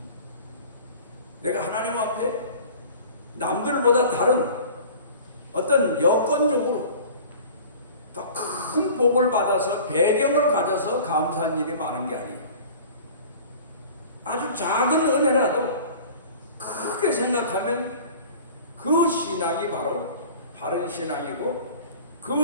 내가 하나님 앞에 남들보다 다른 어떤 여건적으로 더 큰 복을 받아서 배경을 가져서 감사한 일이 많은 게 아니에요. 아주 작은 은혜라도 크게 생각하면 그 신앙이 바로 바른 신앙이고,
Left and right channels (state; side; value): inverted; both; correlation -0.42